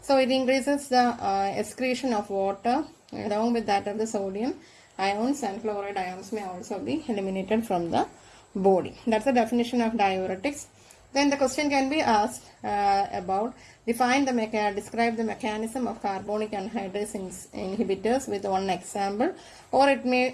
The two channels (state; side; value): identical; both; correlation 1.00